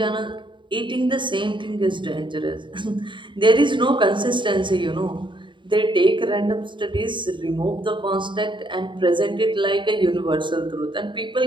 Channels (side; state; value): left; late; 0.23 ms